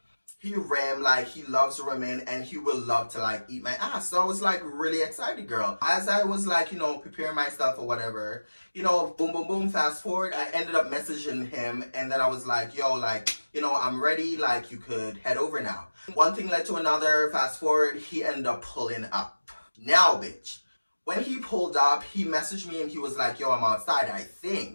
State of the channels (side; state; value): both; inverted; correlation -1.00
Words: he ram, like he loves women and he will love to like eat my ass. So I was like really excited, girl. As I was like, you know, preparing myself or whatever, you know, boom, boom, boom, fast forward, I ended up messaging him and then I was like, yo, like, you know, I'm ready, like you could head over now. One thing led to another, fast forward, he ended up pulling up. Now, bitch, when he pulled up, he messaged me and he was like, yo, I'm outside, I